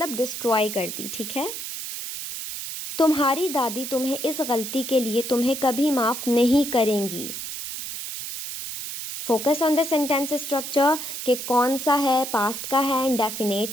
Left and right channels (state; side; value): noise; right; hiss, 7 dB below the sound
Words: डिस्ट्रॉय कर दी। ठीक है। तुम्हारी दादी तुम्हें इस गलती के लिए तुम्हें कभी माफ़ नहीं करेंगी। Focus on the sentence structure कि कौन सा है, पास्ट का है,